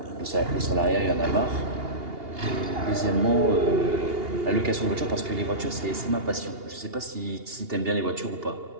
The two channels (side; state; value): left; late; 2.8 ms